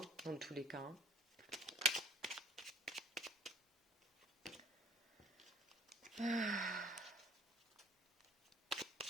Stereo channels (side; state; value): both; normal; correlation 0.55